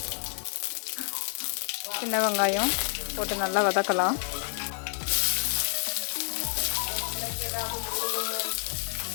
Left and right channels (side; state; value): right; silent; 59 dB below the other